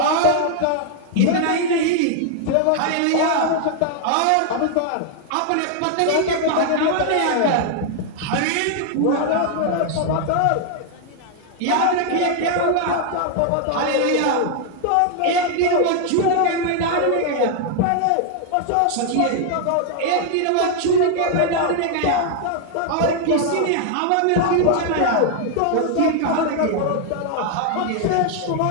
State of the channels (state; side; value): different; both; correlation 0.00